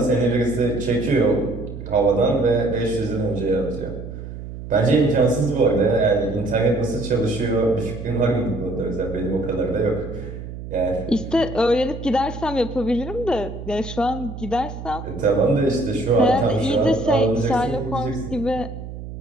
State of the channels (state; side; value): noise; right; hum, 10 dB below the sound